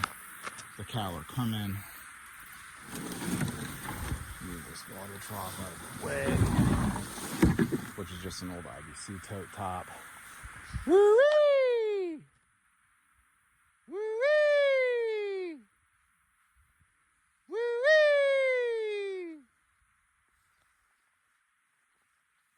The cattle are coming. Move this water trough out of the way, which is just an old IBC tote top. Woo-wee! Woo-wee! Woo-wee!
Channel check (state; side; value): identical; both; correlation 1.00